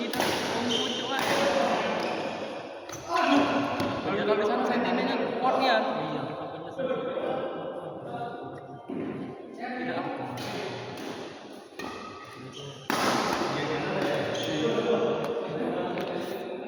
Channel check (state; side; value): identical; both; correlation 1.00